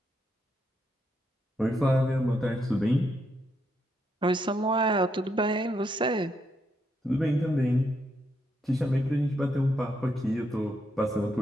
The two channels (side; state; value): both; normal; correlation 0.79